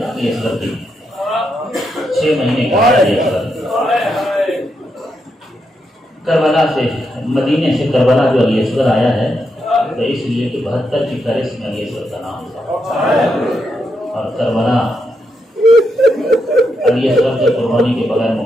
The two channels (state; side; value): normal; both; correlation 0.82